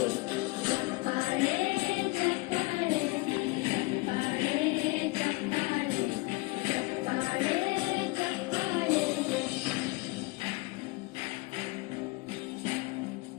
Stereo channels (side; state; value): right; quieter; 25.2 dB